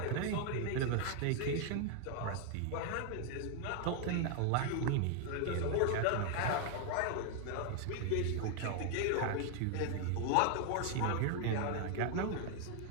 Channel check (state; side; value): different; both; correlation 0.00